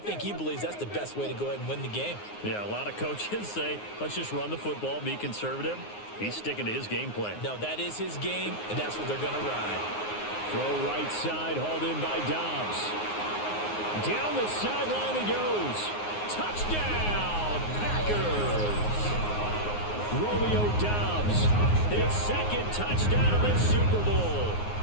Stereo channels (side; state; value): right; late; 9.6 ms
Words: he believes that's the best way to go ahead and win the game. Yeah, a lot of coaches say, let's just run the football, be conservative. He's sticking to his game plan. No, that is his game, and that's what they're going to ride. Throw right side, hauled in by Dobbs. Down the sideline he goes. Touchdown, Packers! Romeo Dobbs, his 2nd touchdown of this Super Bowl.